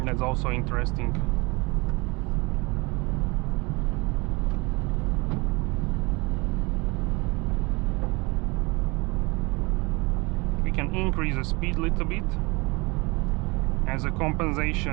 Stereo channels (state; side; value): quieter; left; 26.4 dB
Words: That's also interesting. We can increase the speed a little bit as a